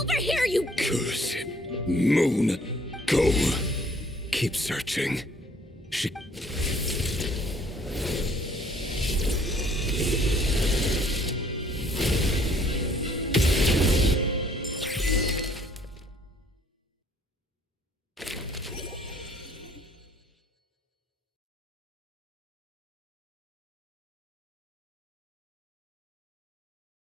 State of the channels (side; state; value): both; normal; correlation 0.60